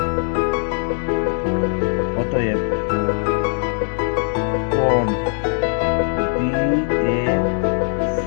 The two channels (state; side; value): silent; right; 56 dB below the other